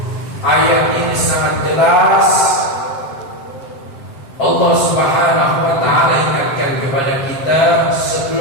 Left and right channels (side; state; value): right; late; 7.7 ms